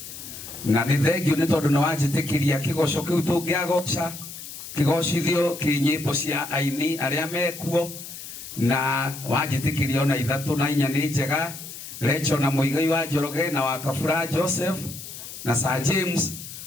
Na ni thank you ni tondu na wanjitikiria kigoco kiu tungiagoca kigocithio kinyimbo cia aini aria mekuo na wanjitikiria ona ithatu na inya ni njega. Rachel na Muigai wa Njoroge na wa Kabura Joseph na Sir James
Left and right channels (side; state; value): left; noise; hiss, 12 dB below the sound